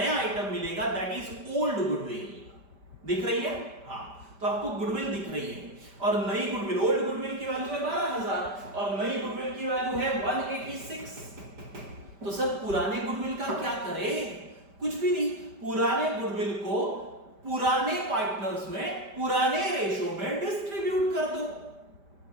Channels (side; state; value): left; late; 5.1 ms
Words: आइटम मिलेगा, दैट इज ओल्ड गुडविल। दिख रही है? हाँ, तो आपको गुडविल दिख रही है, और नई गुडविल, ओल्ड गुडविल की की वैल्यू है 12,000 और नई गुडविल की वैल्यू है 186। तो सर पुराने गुडविल का क्या करें? कुछ भी नहीं, पुराने गुडविल को पुराने पार्टनर्स में पुराने रेशो में डिस्ट्रीब्यूट कर दो।